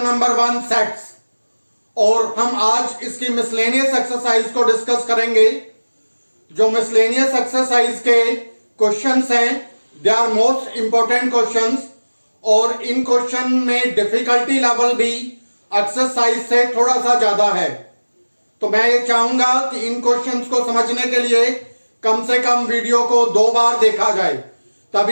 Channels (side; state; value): both; inverted; correlation -1.00